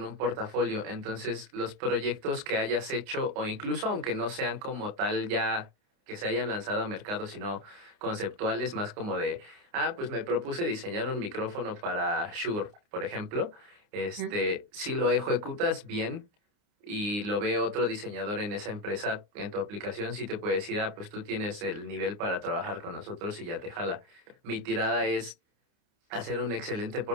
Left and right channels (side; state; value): left; late; 29 ms